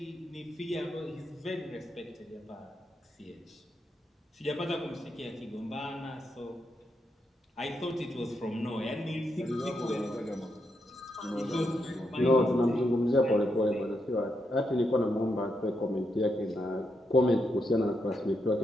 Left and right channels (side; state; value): both; normal; correlation 0.82